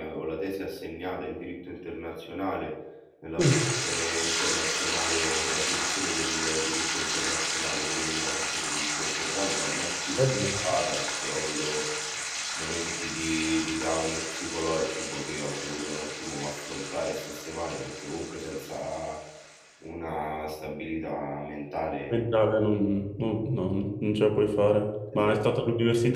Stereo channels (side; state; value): both; identical; correlation 1.00